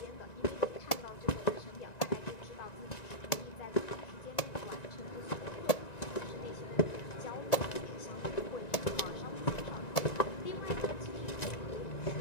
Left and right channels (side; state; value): right; late; 1.9 ms